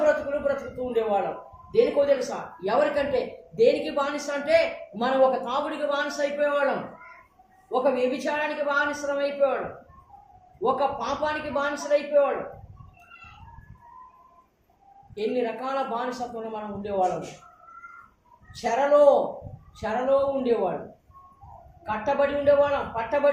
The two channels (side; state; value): both; identical; correlation 1.00